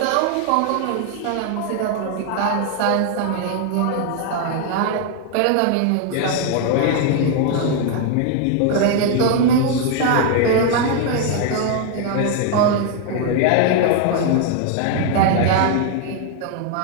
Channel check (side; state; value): both; different; correlation 0.00